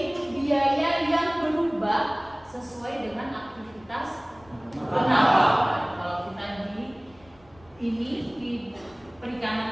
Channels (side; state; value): left; noise; rumble, 28 dB below the sound